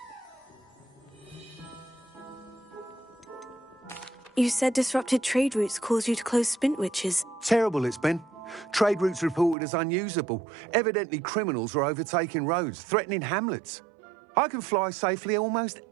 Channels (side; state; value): left; drops out; at 9.6 s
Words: You said disrupted trade routes caused you to close Spintwitches. Terrible it's been. Trade routes reported as unusable. Evidently criminals were overtaking roads, threatening hamlets. I can fly safely almost